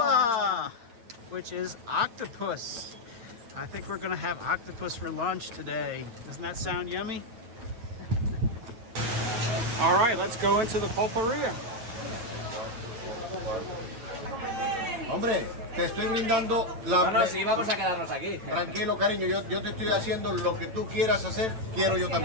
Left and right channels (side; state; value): left; late; 8.9 ms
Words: which is octopus. I think we're gonna have octopus for lunch today. Doesn't that sound yummy? All right, let's go into the pulperia. Hombre, te estoy brindando la... No, sí, vamos a quedarnos aquí. Tranquilo, cariño, yo te estoy haciendo lo que tú quieras hacer, quiero yo